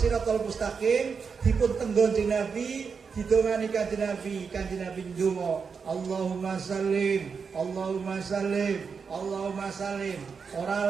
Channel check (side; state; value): left; quieter; 5.7 dB